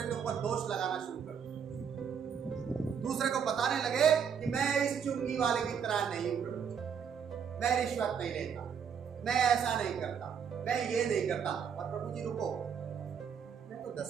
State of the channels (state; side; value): quieter; left; 7.3 dB